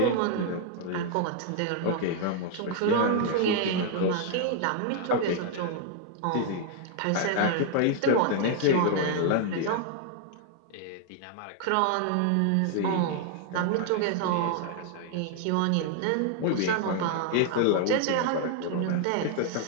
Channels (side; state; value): both; different; correlation 0.00